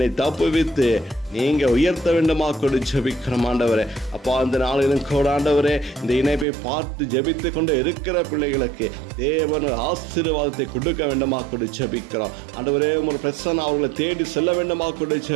தப்புவித்து நீங்க உயர்த்த வேண்டுமா கூட ஜெபிக்கிறோம் ஆண்டவரே. அப்பா, அந்த நாளிலும் கூட ஆண்டவரே இந்த இணைப்பை பார்த்து ஜெபித்து கொண்டு இருக்கிற பிள்ளைகளுக்கு தேவன் ஆசீர்வாதத்தை கொடுக்க வேண்டுமா கூட ஜெபிக்கிறோம் ஆண்டவரே. உமது பிரசன்னம் அவர்களை தேடி செல்ல வேண்டுமா கூட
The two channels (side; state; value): left; drops out; at 6.5 s